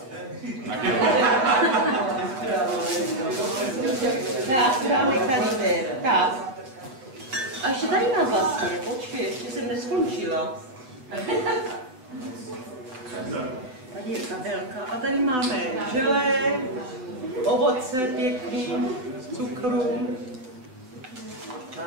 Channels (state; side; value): late; left; 7.9 ms